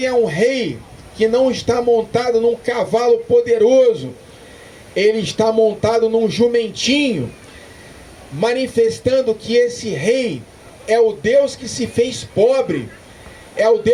é um rei que não está montado num cavalo poderoso. Ele está montado num jumentinho, manifestando que esse rei é o Deus que se fez pobre, é o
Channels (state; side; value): identical; both; correlation 1.00